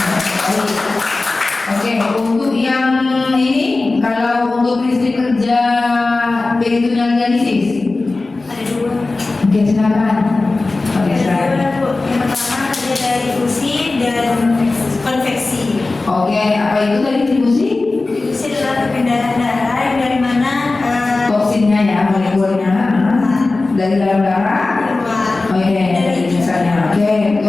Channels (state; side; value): quieter; right; 3.4 dB